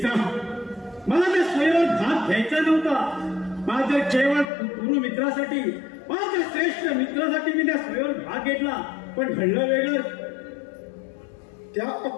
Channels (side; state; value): right; drops out; at 4.5 s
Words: मला त्या स्वयंवर भाग घ्यायचा नव्हता. माझ्या केवळ गुरु मित्रासाठी, माझ्या श्रेष्ठ मित्रासाठी मी त्या स्वयंवर भाग घेतला. पण घडलं वेगळं. त्या